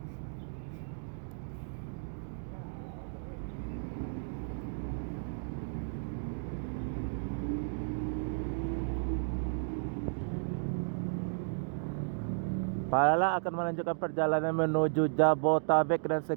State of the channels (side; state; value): left; silent; digital silence